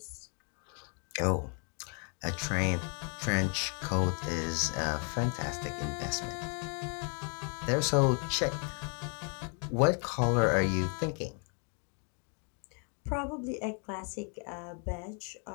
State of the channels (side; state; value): right; quieter; 39.0 dB